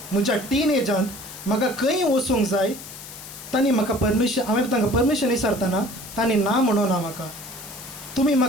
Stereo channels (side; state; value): left; noise; hiss, 14 dB below the sound